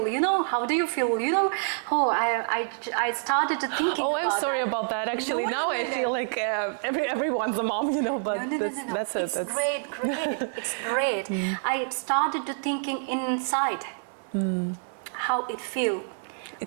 You know, how do you feel? You know, I started to think. Oh, I'm sorry about that. Actually, now I feel like everyone's a mom, you know. But no. That's it. It's great. It's great. I started to thinking inside how it feels.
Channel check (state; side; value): silent; left; 60 dB below the other